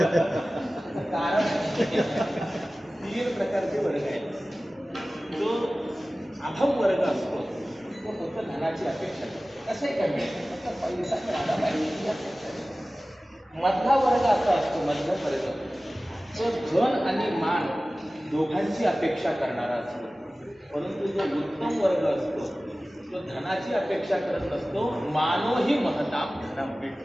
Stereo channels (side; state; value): both; normal; correlation 0.97